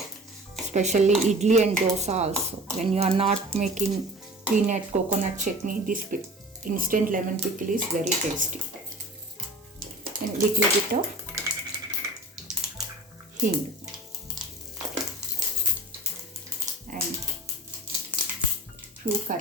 especially idli and dosa also. When you are not making peanut coconut chutney, this instant lemon pickle is very tasty. And little bit of hing and few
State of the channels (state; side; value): normal; both; correlation 0.38